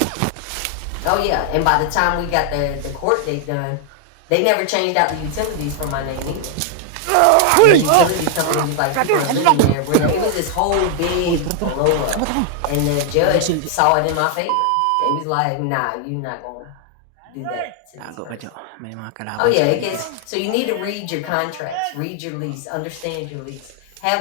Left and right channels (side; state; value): both; different; correlation 0.00